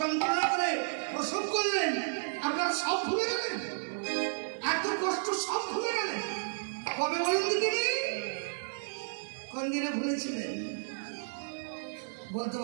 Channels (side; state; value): left; silent; 56 dB below the other